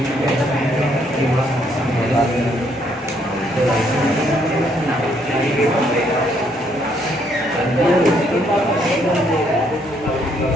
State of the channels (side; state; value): both; normal; correlation 0.70